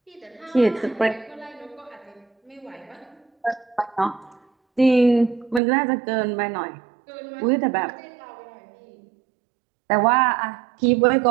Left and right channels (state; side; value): drops out; left; at 5.6 s